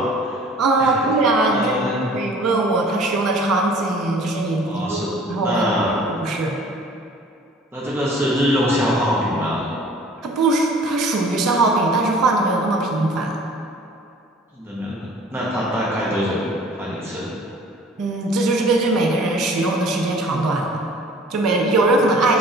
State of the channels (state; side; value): normal; both; correlation 0.49